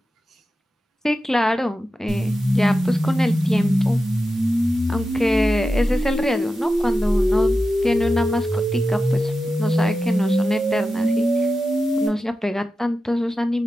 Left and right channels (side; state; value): both; normal; correlation 0.91